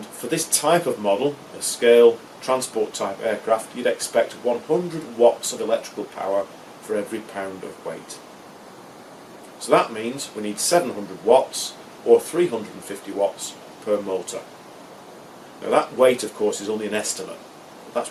for this type of model, a scale transport type aircraft, you'd expect 100 watts of electrical power for every pound of weight. So that means we need 700 watts or 350 watts per motor. Now that weight, of course, is only an estimate.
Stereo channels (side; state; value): both; identical; correlation 1.00